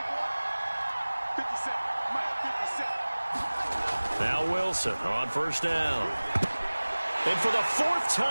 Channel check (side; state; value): both; inverted; correlation -1.00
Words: Now Wilson on first down. And for the fourth